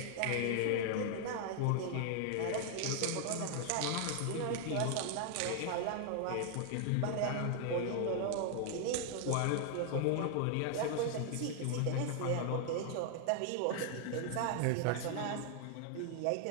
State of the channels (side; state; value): both; different; correlation 0.00